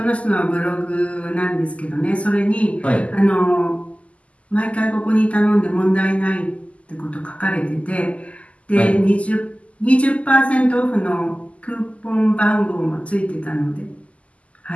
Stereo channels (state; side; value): late; right; 0.064 ms